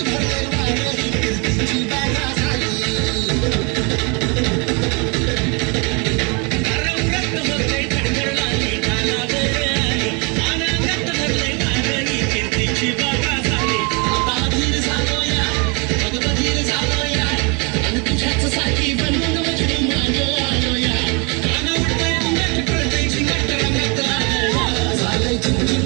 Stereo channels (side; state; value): left; quieter; 32.0 dB